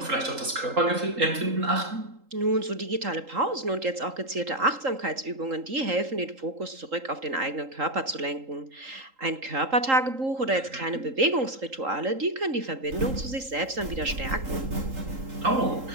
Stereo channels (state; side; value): late; left; 3.8 ms